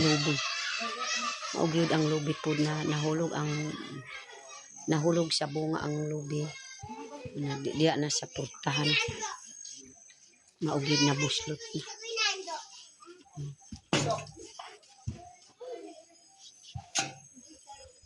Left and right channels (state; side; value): identical; both; correlation 1.00